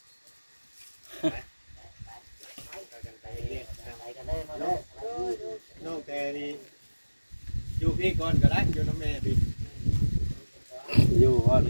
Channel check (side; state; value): both; inverted; correlation -1.00